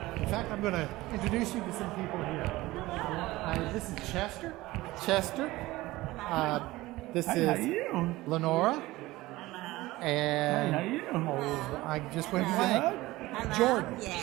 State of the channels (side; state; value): left; quieter; 18.7 dB